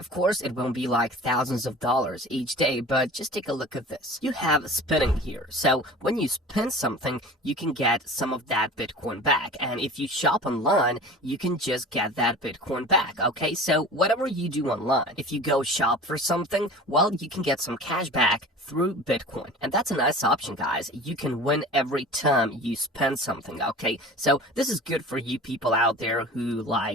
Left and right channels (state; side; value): normal; both; correlation 0.39